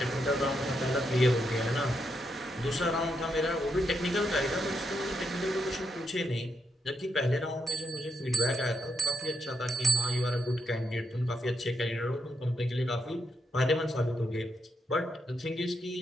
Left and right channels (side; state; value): both; normal; correlation 0.80